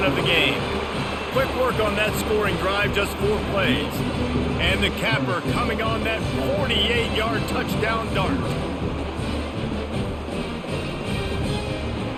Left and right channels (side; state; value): both; identical; correlation 1.00